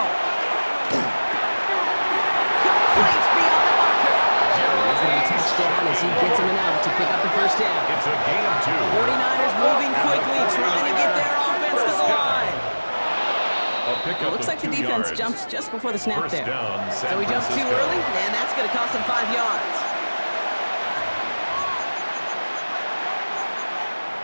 Complete beyond the marker. And he's going to be touchdown as he gets him an out to pick up the first down. It's a gain of 2. 49ers moving quickly, trying to get their offense to the line. It looks like the defense jumps just before the snap there. So he jumped too early, and that's going to cost him 5 yards.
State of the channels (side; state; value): both; inverted; correlation -1.00